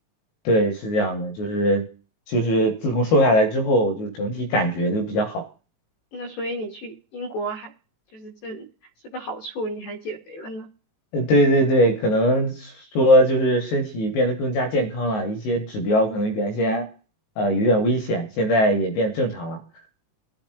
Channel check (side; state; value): right; late; 19 ms